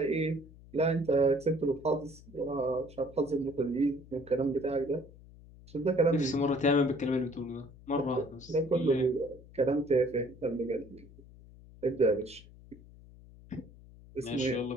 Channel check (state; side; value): noise; left; hum, 21 dB below the sound